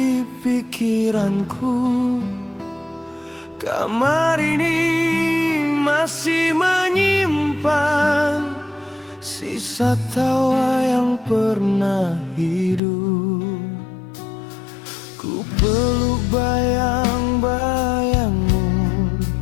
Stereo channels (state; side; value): drops out; right; at 12.8 s